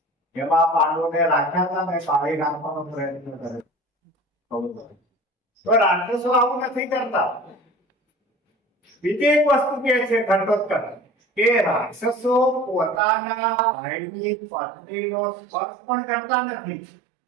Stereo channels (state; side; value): drops out; left; at 13.0 s